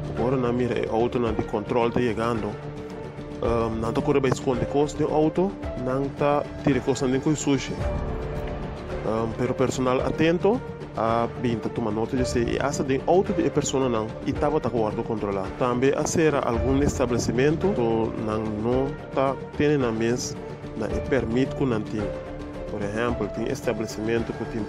agora na mira é auto na de controle tá chegando não tá correndo para esconder coisa de auto não tá tira coisa nem com sushi pero personal atento a binta toma nota de se essa de auto de pessoa não e tava tá guardo controlar também a ser algum estabelecimento to não tá tendo na mesa na e permite com não tem por exemplo tem estabelecimento que tem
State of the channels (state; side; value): identical; both; correlation 1.00